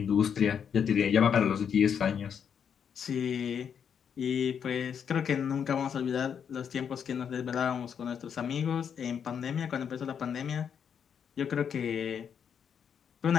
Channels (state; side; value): quieter; right; 7.6 dB